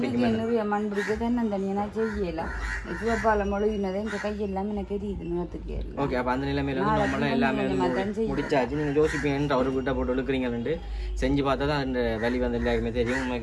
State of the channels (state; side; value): identical; both; correlation 1.00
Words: மண் பிடிக்க தென்னந்தனியா செய்யலாம் சிவப்பால மொழிகினதை இந்த கையெல்லாம் எனக்கு தெரியுது நிலத்துக்கு ஓகே அப்போ அந்த நிலைமையில வந்து நம்மளாம் எல்லாமே முடிச்சாச்சு நீங்கள் யோசிப்பீங்கன்ட்டு அவர் வீட்டை போட்டு இழுக்கிறீங்கன்ட்டு செஞ்சு பார்த்தா தான் அந்த வலி வந்து எல்லாருக்குமே தெரியும்